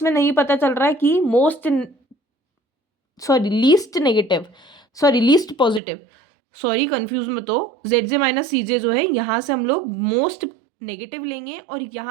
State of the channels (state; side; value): drops out; left; at 5.8 s